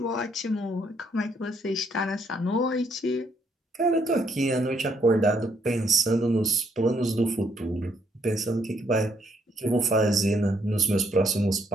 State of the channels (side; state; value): both; normal; correlation 0.71